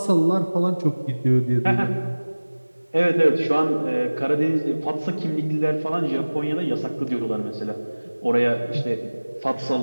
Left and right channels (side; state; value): both; inverted; correlation -1.00